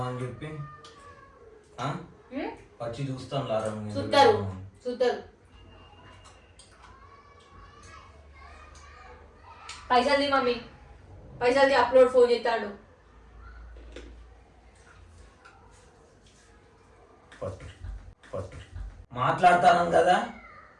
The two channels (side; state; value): both; identical; correlation 1.00